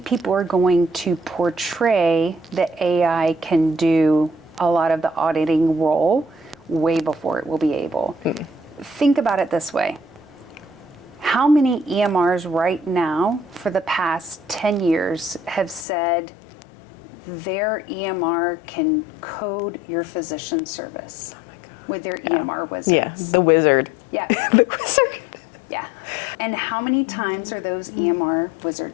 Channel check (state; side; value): drops out; right; at 15.9 s